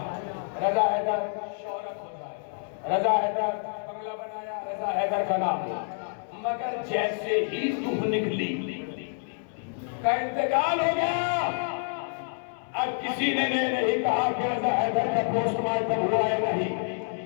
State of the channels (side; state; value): right; silent; 59 dB below the other